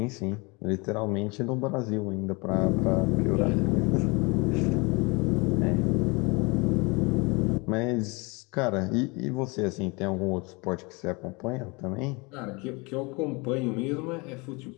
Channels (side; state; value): right; quieter; 27.8 dB